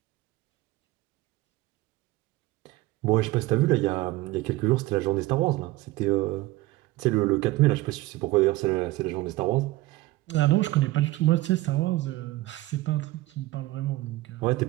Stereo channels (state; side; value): quieter; left; 18.6 dB